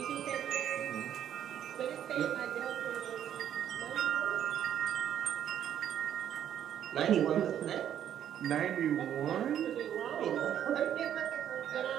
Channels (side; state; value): left; quieter; 10.1 dB